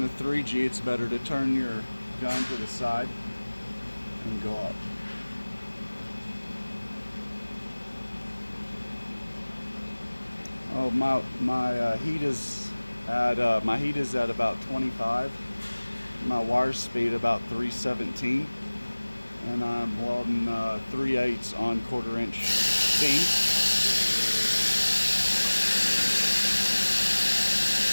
the 3G, it's better to turn your gun to the side and go up. Oh, my heat is at about 25. My wire speed about 317, and I'm welding 3/8 on 1/4 inch beam.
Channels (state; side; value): inverted; both; correlation -1.00